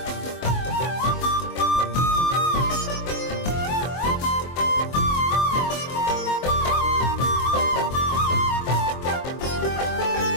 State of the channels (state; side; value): late; right; 24 ms